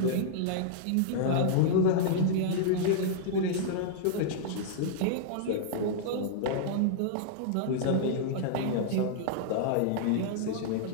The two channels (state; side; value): different; both; correlation -0.02